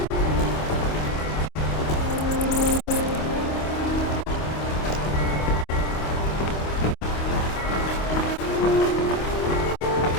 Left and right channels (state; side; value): late; right; 26 ms